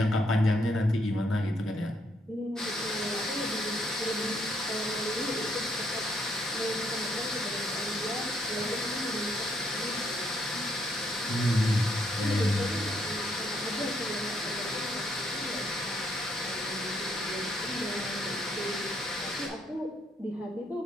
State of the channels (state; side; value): normal; both; correlation 0.72